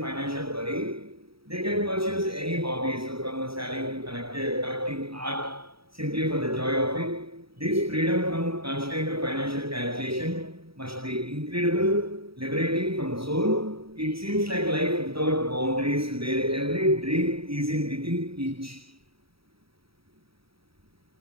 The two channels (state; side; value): late; left; 0.76 ms